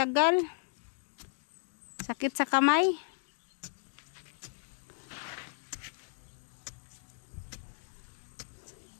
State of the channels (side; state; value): right; silent; digital silence